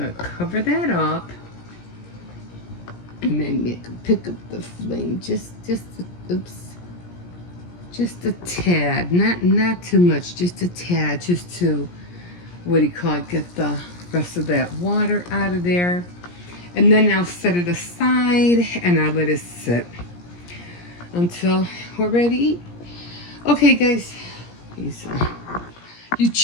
cover that up, and then pick up the flame just a tad, not too much, just a tad, just to get the rest of that water out of there. And then I'll set it aside and I'll let it sit until we're ready to eat. Okay, guys. You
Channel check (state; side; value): late; right; 17 ms